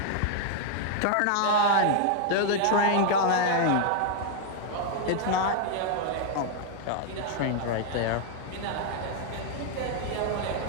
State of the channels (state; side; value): different; both; correlation 0.00